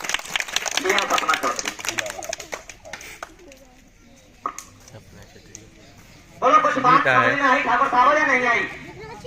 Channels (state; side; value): identical; both; correlation 1.00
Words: ये सपना चौधरी। बोलो कुछ बात समझ में आई ठाकुर साहब या नहीं आई?